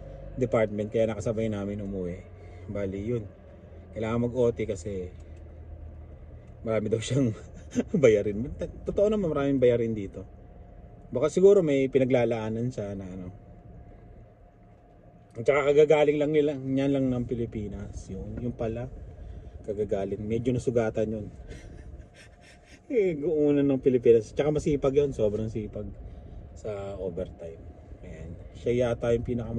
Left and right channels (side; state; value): both; identical; correlation 1.00